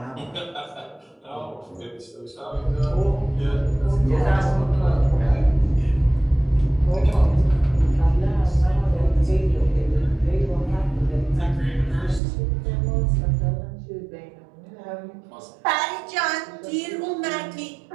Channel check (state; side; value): drops out; left; at 12.2 s